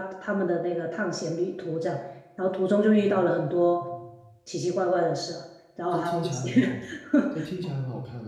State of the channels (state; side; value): identical; both; correlation 1.00